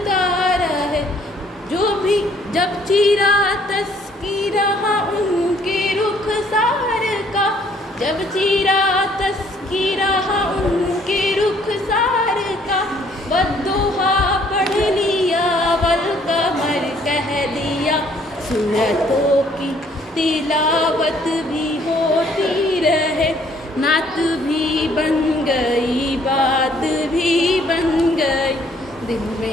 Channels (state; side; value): normal; both; correlation 0.62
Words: रहे। जो भी जब चीरा तस्कीरा उनके रुखसार का, जब चीरा तस्कीरा उनके रुखसार का, बद्दुहा पढ़ लिया वल कमर कह दिया। सूरतों की तिलावत भी होती रहे, नात भी बन गई बात भी बन गई। दिल